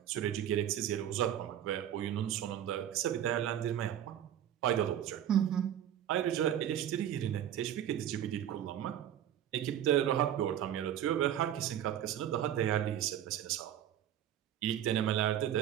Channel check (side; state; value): left; quieter; 10.6 dB